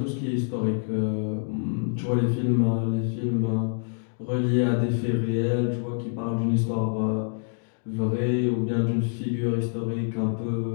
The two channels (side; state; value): right; silent; digital silence